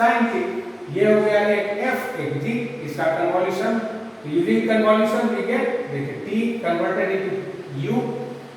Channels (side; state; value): both; identical; correlation 1.00